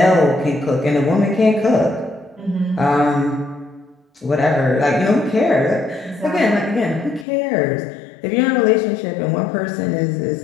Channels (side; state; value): right; drops out; at 7.2 s